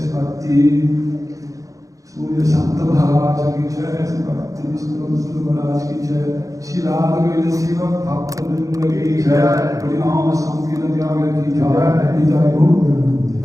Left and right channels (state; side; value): late; left; 0.16 ms